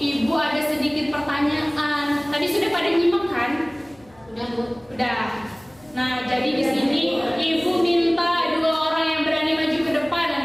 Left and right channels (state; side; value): noise; left; hum, 28 dB below the sound